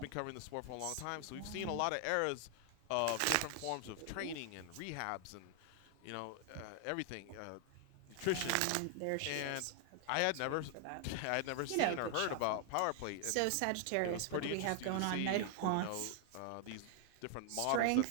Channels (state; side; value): different; both; correlation 0.00